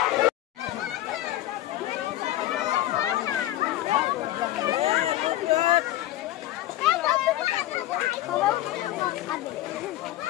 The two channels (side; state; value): right; quieter; 14.7 dB